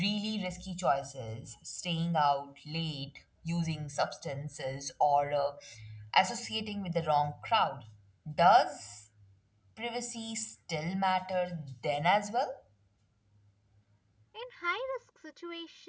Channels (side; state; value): both; identical; correlation 1.00